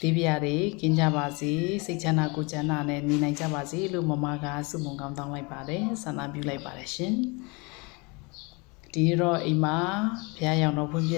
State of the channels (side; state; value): right; quieter; 28.6 dB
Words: ဒီပြားတွေကင်းကြပါစေစိတ်ချမ်းသာကိုယ်ချမ်းသာနဲ့နေနိုင်ကြပါစေလို့မမကဆုမွန်ကောင်းတောင်းလိုက်ပါတယ်ဆန္ဒပြုလိုက်ပါတယ်ရှင်ဒီနေ့တော့အိမ်မှာဘုရားရောင်တော်ဖွင့်ပြ